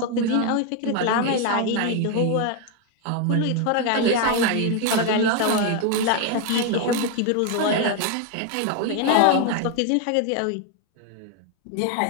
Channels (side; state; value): both; different; correlation 0.01